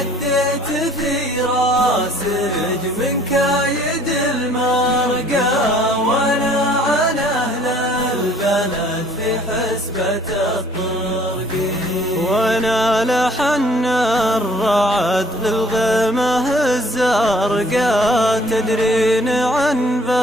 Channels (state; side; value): normal; both; correlation 0.57